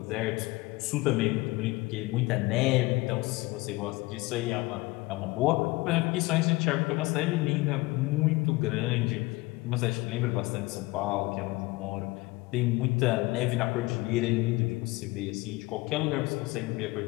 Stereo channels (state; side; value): quieter; right; 21.9 dB